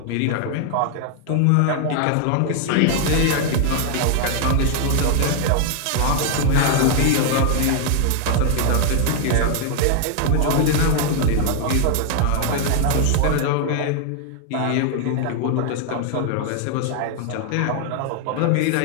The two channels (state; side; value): different; both; correlation 0.00